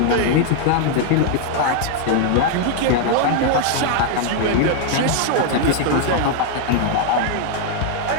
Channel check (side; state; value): both; different; correlation 0.00